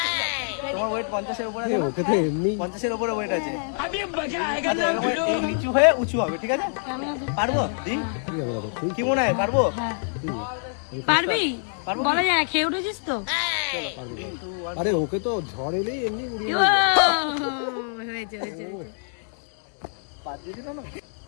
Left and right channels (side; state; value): right; silent; 61 dB below the other